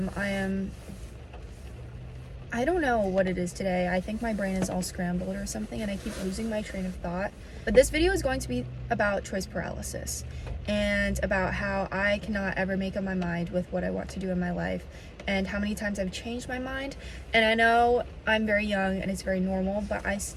don't know what it is today. I think my brain is all scrambled or something and I keep losing my train of thought. But this video is going to be about choice paralysis and about how I cannot ever make up my mind with what I want to do in my life and how many times I've changed my mind. And I know I'm very young and it's very normal, but I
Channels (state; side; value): identical; both; correlation 1.00